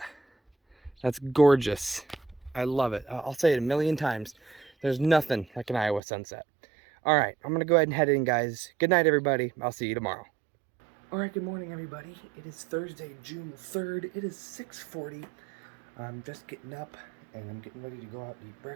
That's gorgeous. I love it. I'll say it a million times. There's nothing like an Iowa sunset. Alright, I'm going to go ahead and head in, guys. Good night, everybody. I'll see you tomorrow. Alright, good morning, everybody. It is Thursday, June 3rd. It is 6:40. I'm just getting up, and I'm getting ready to go out and eat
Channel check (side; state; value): left; drops out; at 6.0 s